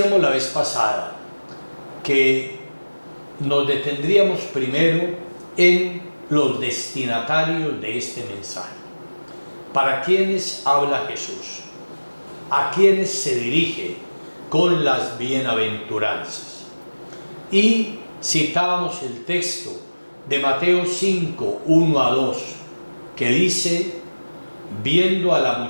la vez pasada que nos detendríamos primero en los destinatarios de este mensaje. ¿Para quiénes habla Jesús? ¿A quiénes se dirige con las bienaventuranzas? Y citábamos el texto de Mateo 5, 1 a 2, que dice: viendo a la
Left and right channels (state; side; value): inverted; both; correlation -1.00